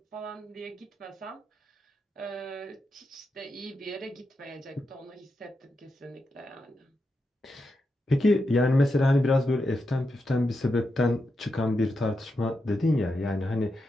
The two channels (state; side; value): normal; both; correlation 0.86